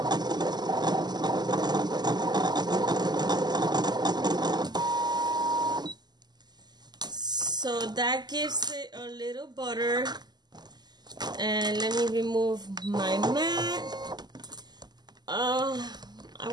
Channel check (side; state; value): left; late; 0.20 ms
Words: So that gives it a little butter. And let me remove my mat. I